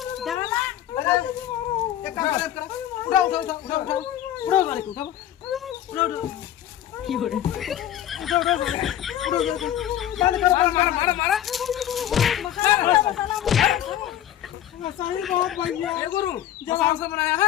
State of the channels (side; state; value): right; quieter; 11.6 dB